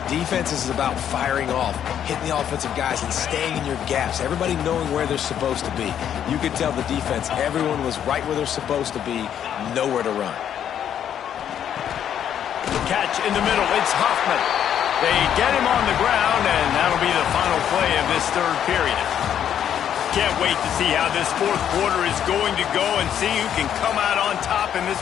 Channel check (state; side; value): quieter; right; 9.5 dB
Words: Defense is about firing off, hitting the offensive guys, and staying in your gaps. Everybody knowing where they're supposed to be. You could tell the defense, everyone was right where they're supposed to be, nowhere to run. catch in the middle. It's Hoffman. They get him on the ground, and that'll be the final play of this third period. Can't wait to see how this fourth quarter is going to go and see who can come out on top in this